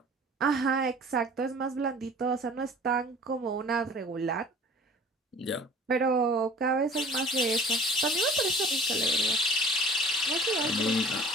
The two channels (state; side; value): normal; both; correlation 0.46